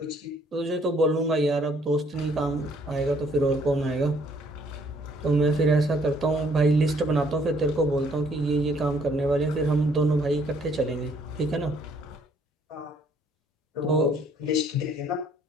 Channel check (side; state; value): both; normal; correlation 0.64